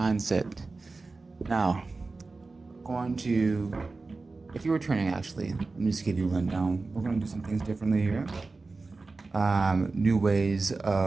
Now, going to, if you're returning actually, let me just give you a rundown. We're going to do some things differently here. New ways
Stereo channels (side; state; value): left; quieter; 3.7 dB